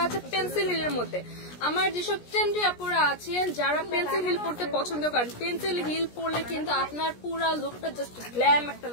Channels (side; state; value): right; late; 17 ms